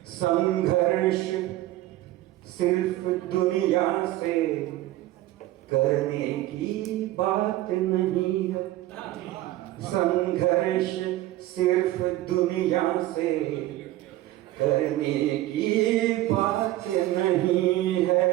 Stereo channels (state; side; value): quieter; left; 15.7 dB